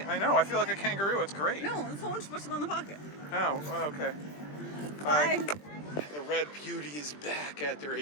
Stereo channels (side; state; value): right; late; 20 ms